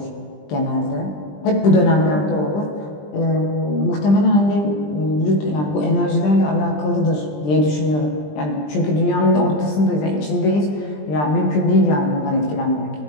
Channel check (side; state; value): right; late; 20 ms